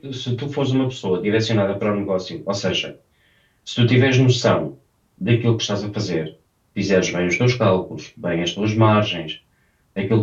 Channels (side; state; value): both; identical; correlation 1.00